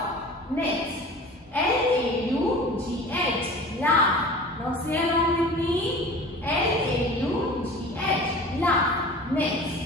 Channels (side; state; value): both; normal; correlation 0.40